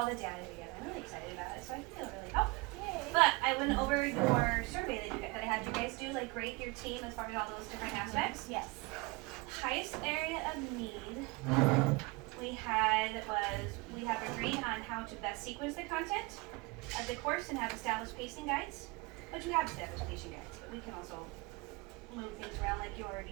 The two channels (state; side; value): quieter; left; 25.2 dB